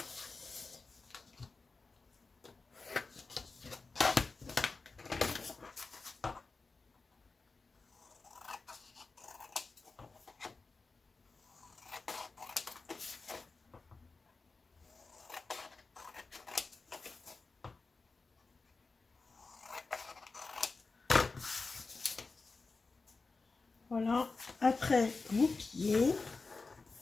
Voilà, après vous pliez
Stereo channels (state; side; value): quieter; right; 4.0 dB